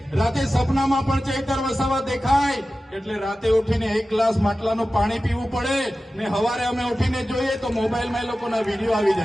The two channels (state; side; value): normal; both; correlation 0.95